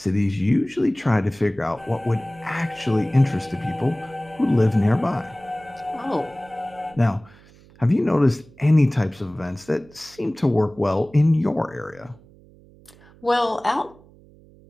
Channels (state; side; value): noise; right; hum, 26 dB below the sound